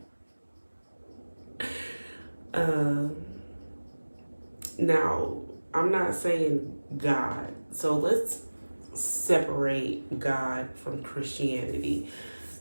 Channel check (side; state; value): both; inverted; correlation -1.00